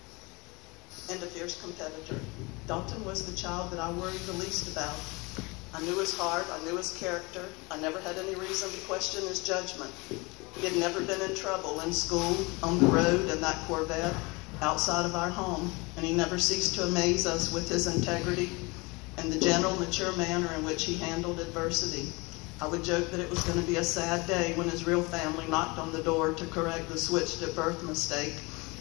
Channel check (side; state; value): right; quieter; 26.0 dB